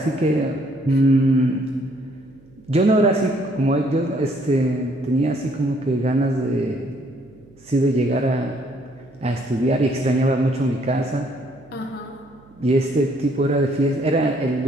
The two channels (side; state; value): right; noise; hum, 27 dB below the sound